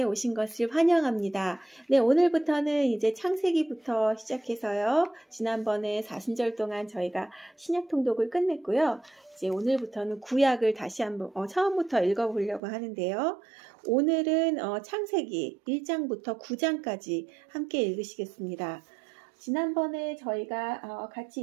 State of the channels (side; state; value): left; drops out; at 12.6 s